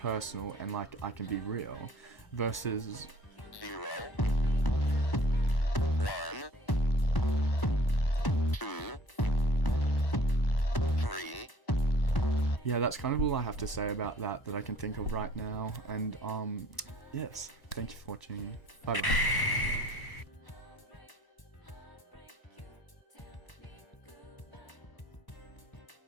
and like I can be real, versus 0, 1, 2, 3. Yeah, that's kind of all I have to say about that I can think of right now, and yes, thank you for watching. Bye bye.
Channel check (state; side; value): late; right; 1.0 ms